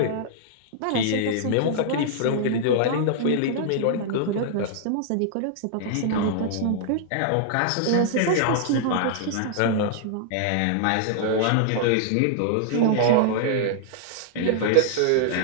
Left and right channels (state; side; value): different; both; correlation -0.01